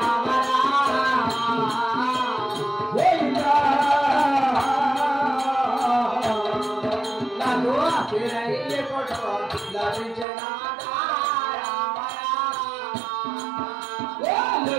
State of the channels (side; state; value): left; drops out; at 10.2 s